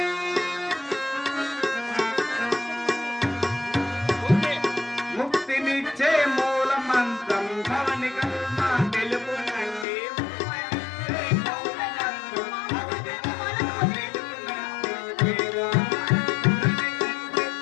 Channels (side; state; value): right; drops out; at 9.9 s